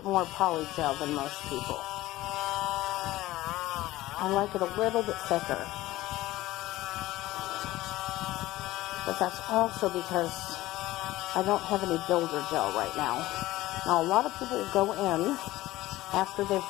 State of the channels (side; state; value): right; quieter; 17.1 dB